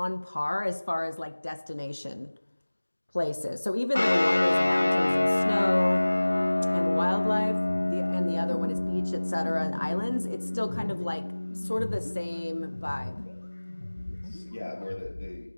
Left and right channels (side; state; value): both; inverted; correlation -1.00